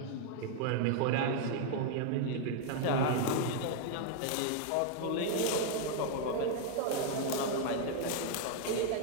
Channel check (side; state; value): both; different; correlation 0.00